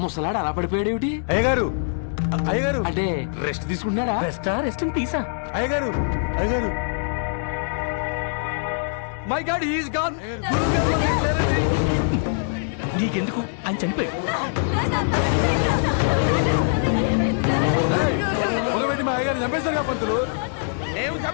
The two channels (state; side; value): silent; right; digital silence